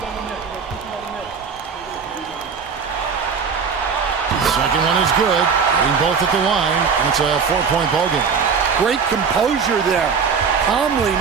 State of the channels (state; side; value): quieter; left; 6.0 dB